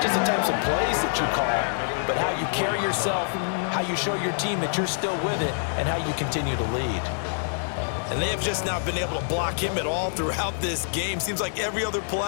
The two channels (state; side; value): silent; right; digital silence